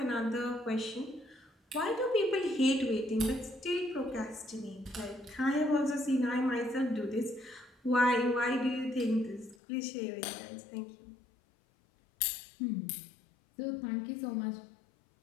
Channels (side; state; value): right; drops out; at 9.6 s